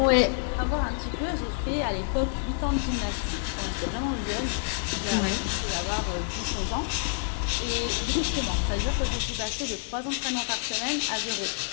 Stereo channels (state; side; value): silent; right; digital silence